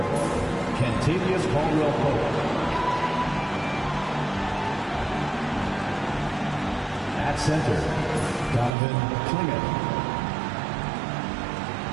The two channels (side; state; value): left; drops out; at 8.7 s